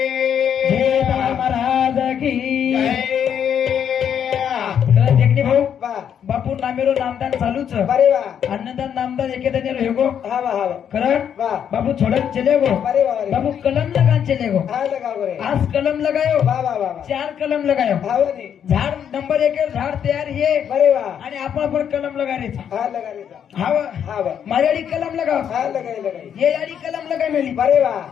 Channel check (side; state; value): right; quieter; 8.6 dB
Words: जय महाराज की जय देखणे भाऊ बा बापू नामेरो नामदान चालूच बरे बा अन्नदान नामदान एकेदाने रहेगो हा बा कारण बा बाबू छोड़न चले गो बरे बा बाबू कलम लगान चले गो. हा लगा बरे आज कलम लगायो बा बा बा 4 कलम लगायो. भावनी झाड नंबर 1 झाड तयार है बरे बा आणि आपण कलम लगायचा. हा लगा रे हाव हा बा मारेडी कलम लगाव. हा लगाई ये याडी कलम लगाय मेली. बरे बा